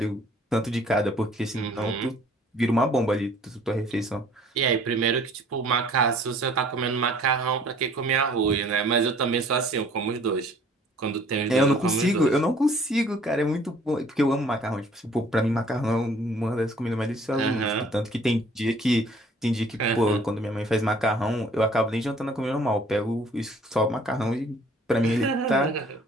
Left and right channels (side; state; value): both; normal; correlation 0.55